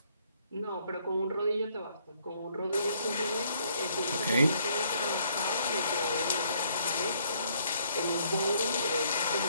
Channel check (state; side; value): inverted; both; correlation -0.67